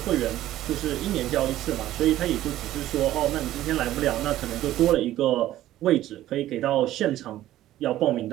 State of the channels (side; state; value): left; quieter; 13.9 dB